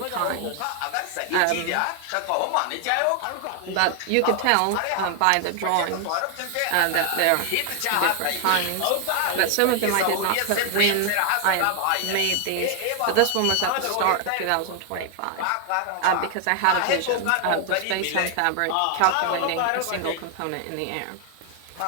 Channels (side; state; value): both; different; correlation 0.00